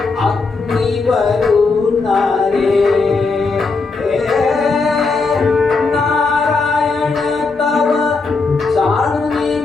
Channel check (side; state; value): right; quieter; 4.1 dB